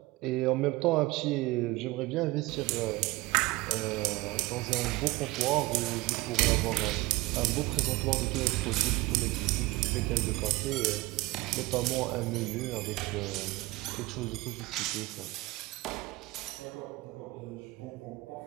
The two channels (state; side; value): quieter; left; 21.0 dB